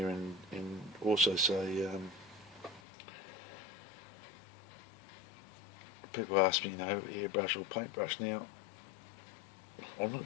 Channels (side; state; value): right; drops out; at 2.8 s